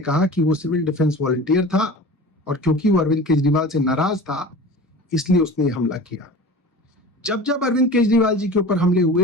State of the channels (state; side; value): normal; both; correlation 0.37